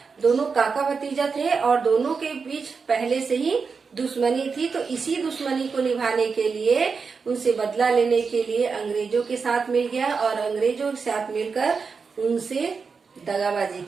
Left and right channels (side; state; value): left; quieter; 5.2 dB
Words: दोनों काका भतीजा थे और दोनों के बीच पहले से ही दुश्मनी थी। तो इसी दुश्मनी को निभाने के लिए, उनसे बदला लेने के लिए अंग्रेजों के साथ मिल गया और अंग्रेजों के साथ मिलकर उनसे दगाबाजी